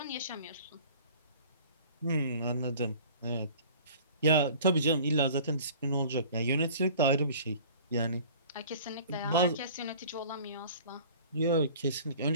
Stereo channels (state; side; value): inverted; both; correlation -0.46